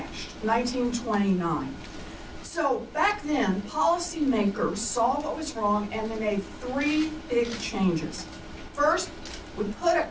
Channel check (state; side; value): identical; both; correlation 1.00